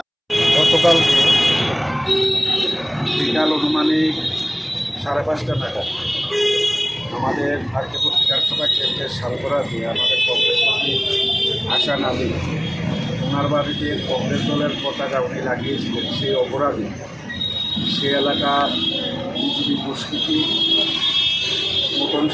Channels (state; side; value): identical; both; correlation 1.00